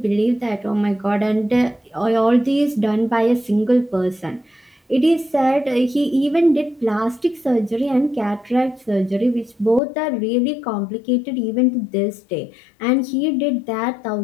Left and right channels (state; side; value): drops out; right; at 9.8 s